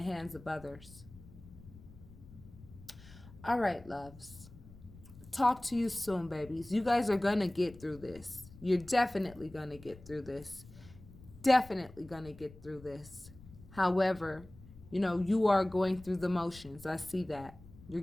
hands of others. All right, loves. Talk to you soon, babies. You guys are going to get through this. You're definitely going to get through this. Definitely going to get through this. However, you are going through the motions. I see that. You're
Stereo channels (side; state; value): left; noise; rumble, 20 dB below the sound